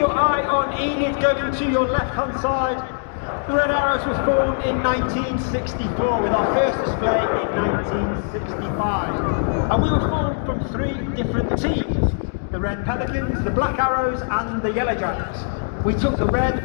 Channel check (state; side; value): silent; right; digital silence